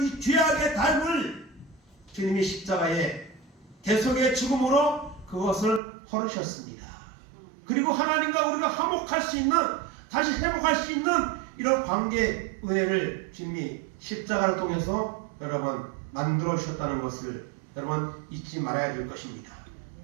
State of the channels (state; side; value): drops out; left; at 5.8 s